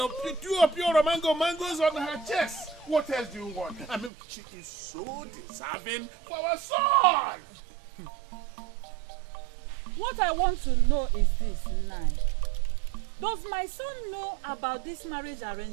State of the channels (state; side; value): drops out; left; at 4.1 s